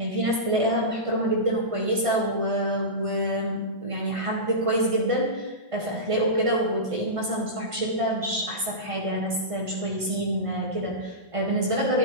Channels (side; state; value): left; late; 1.5 ms